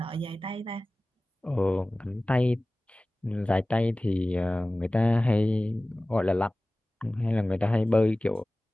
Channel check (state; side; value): normal; both; correlation 0.98